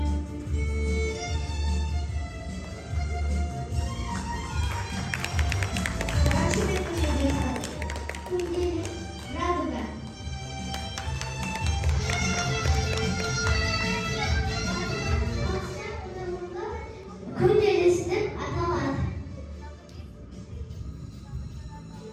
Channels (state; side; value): identical; both; correlation 1.00